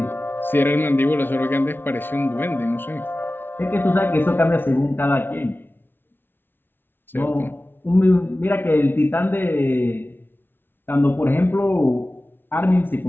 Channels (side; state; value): right; late; 0.10 ms